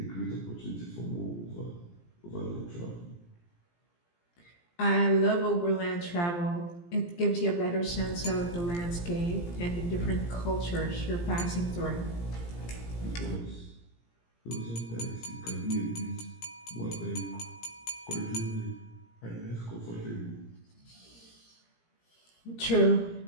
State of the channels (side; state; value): right; late; 17 ms